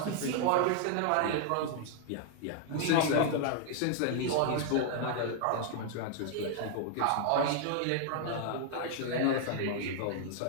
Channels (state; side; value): different; both; correlation 0.00